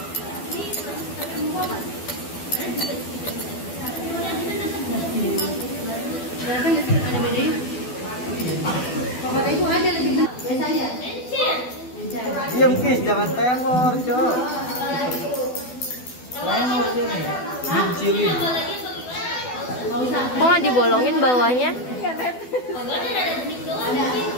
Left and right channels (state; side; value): late; right; 12 ms